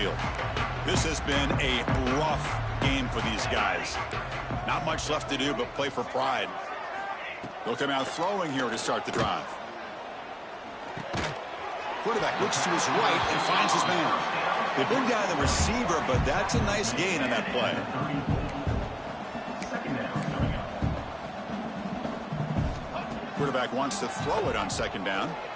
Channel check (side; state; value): both; identical; correlation 1.00